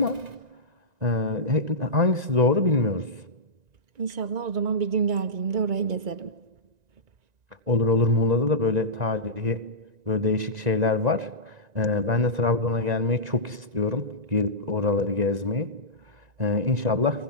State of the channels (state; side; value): late; left; 1.9 ms